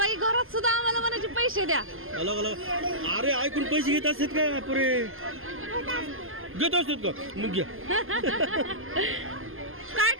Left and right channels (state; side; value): late; left; 0.60 ms